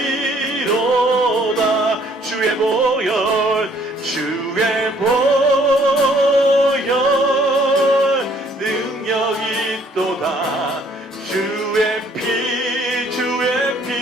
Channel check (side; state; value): both; normal; correlation 0.62